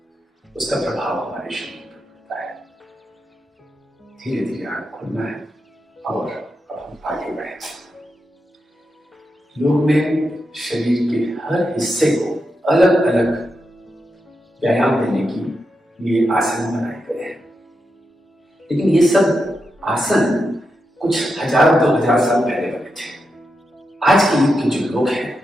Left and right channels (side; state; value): both; normal; correlation 0.87